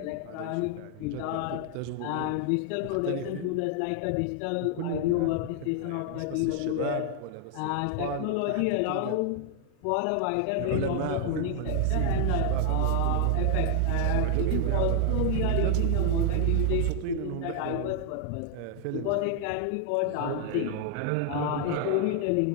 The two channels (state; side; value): different; both; correlation 0.00